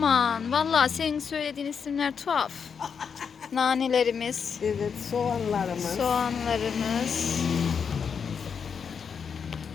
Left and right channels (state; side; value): quieter; right; 6.5 dB